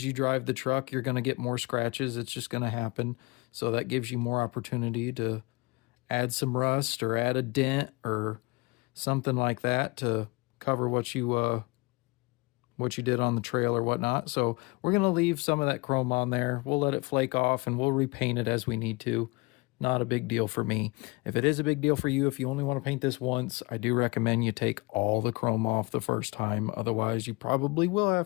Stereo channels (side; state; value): right; quieter; 26.1 dB